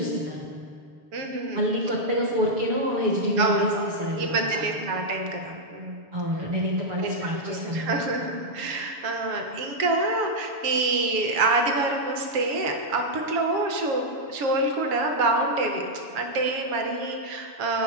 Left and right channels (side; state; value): left; late; 7.0 ms